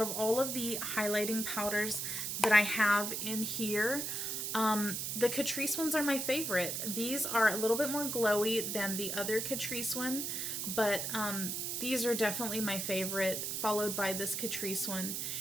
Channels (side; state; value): right; noise; hiss, 2 dB below the sound